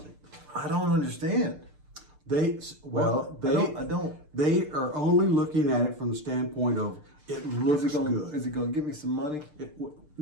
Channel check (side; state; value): left; late; 6.7 ms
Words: I don't understand. I don't. They are only looking at it from the standpoint of it looks good. Is it going to give me some money?